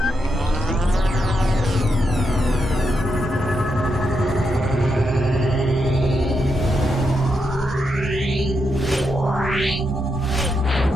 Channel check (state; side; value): normal; both; correlation 0.83